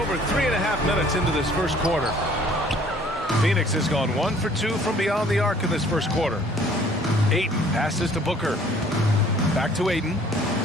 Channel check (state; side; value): normal; both; correlation 0.56